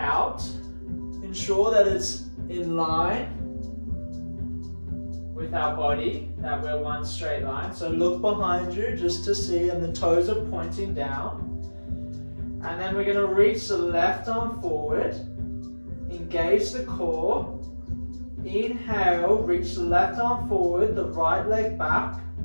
ensure that it's in line with our body, that we're one straight line. So look behind you just to see, and the toes are pointing down. And then we're going to reach the left arm forward, engage the core. Inhale, reach the left arm forward, the right leg back.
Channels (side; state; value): both; inverted; correlation -1.00